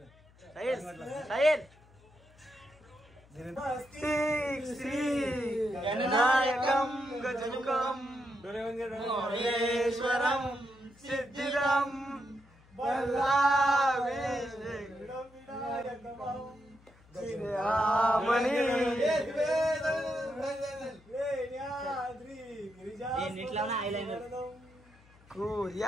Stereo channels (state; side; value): noise; left; hum, 27 dB below the sound